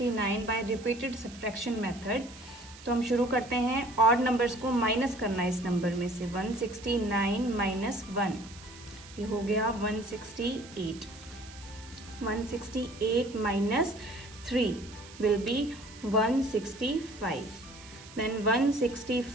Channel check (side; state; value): right; noise; hiss, 19 dB below the sound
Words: by repeated subtraction method. तो हम शुरू करते हैं, ऑड नंबर्स को माइनस करना है इस नंबर में से। 169 माइनस 1, ये हो गया 168। 168 minus 3 will be 165. Then